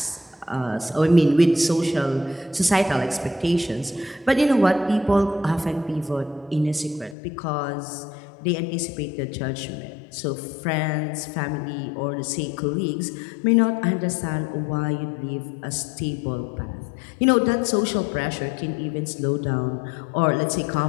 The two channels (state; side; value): drops out; right; at 7.2 s